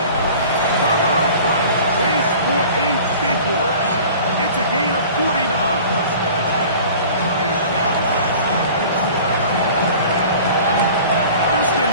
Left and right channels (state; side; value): inverted; both; correlation -0.44